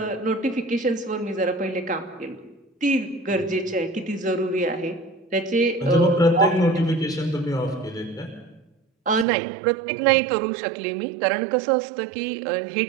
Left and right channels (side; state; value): left; drops out; at 9.2 s